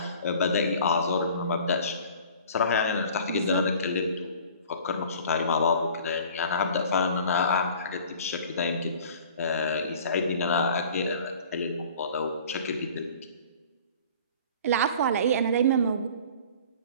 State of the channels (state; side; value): inverted; both; correlation -0.46